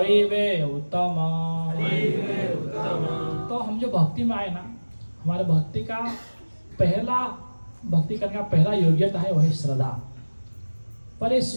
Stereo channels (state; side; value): inverted; both; correlation -1.00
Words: वे उत्तम। तो हम जो भक्ति में आए ना, हमारे भक्ति का पहला, भक्ति करने का पहला योग्यता है वही श्रद्धा। पर